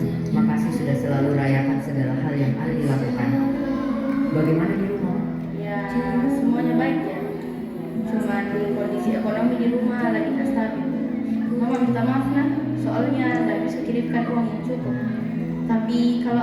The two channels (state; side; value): identical; both; correlation 1.00